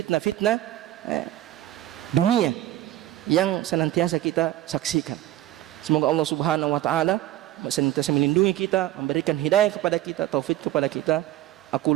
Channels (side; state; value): left; quieter; 14.3 dB